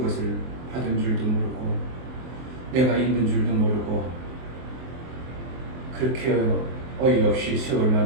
받은 줄도 모르고 내가 있는 줄도 모르고 그렇게 어이없이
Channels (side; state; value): left; late; 23 ms